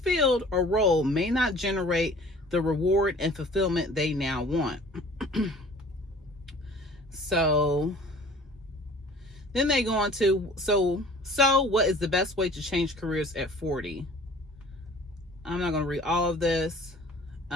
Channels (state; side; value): normal; both; correlation 0.49